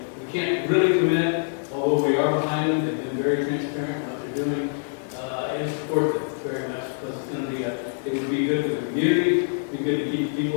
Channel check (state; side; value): silent; right; digital silence